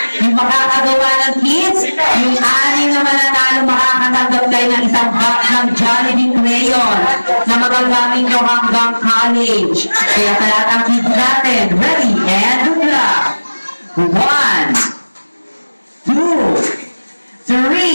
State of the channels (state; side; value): inverted; both; correlation -1.00